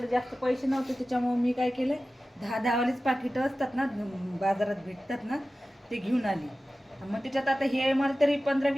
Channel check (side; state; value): both; normal; correlation 0.95